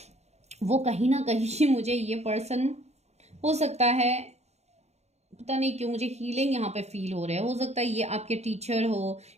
वो कहीं ना कहीं मुझे ये पर्सन, हो सकता है, पता नहीं क्यों मुझे हीलिंग यहाँ पे फील हो रहा है। हो सकता है ये आपके टीचर हो,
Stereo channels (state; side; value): late; left; 0.32 ms